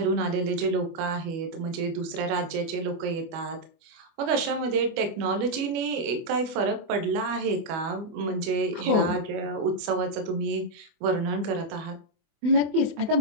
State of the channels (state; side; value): late; left; 25 ms